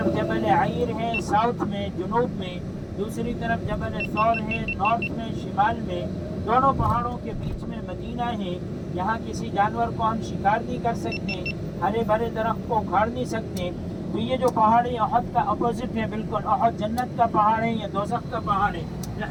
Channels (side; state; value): both; identical; correlation 1.00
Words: جبل عیر ہے ساؤتھ میں, جنوب میں, دوسری طرف جبل ثور ہے نارتھ میں, شمال میں. دونوں پہاڑوں کے بیچ میں مدینہ ہے. یہاں کسی جانور کو ہم شکار نہیں کر سکتے, ہرے بھرے درخت کو اکھاڑ نہیں سکتے. تو یہ جو پہاڑ ہے احد کا اپوزٹ ہے بالکل. احد جنت کا پہاڑ ہے, یہ دوزخ کا پہاڑ ہے. میں